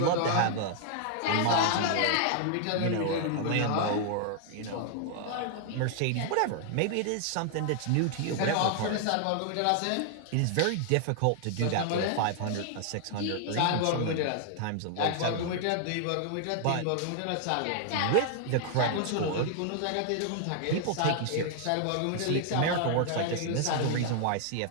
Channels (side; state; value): both; different; correlation 0.00